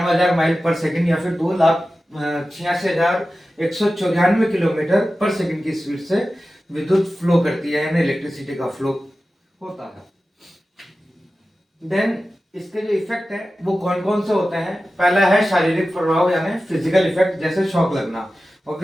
माइल पर सेकंड या फिर 2,86,194 किलोमीटर पर सेकंड की स्पीड से विद्युत फ्लो करती है, यानी इलेक्ट्रिसिटी का फ्लो होता है। देन इसके जो इफेक्ट है वो कौन कौन से होते हैं। पहला है शारीरिक प्रभाव, यानी फिजिकल इफेक्ट, जैसे शॉक लगना।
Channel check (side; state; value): both; normal; correlation 0.94